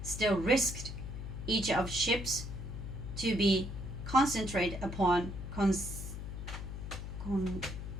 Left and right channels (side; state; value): left; noise; hum, 7 dB below the sound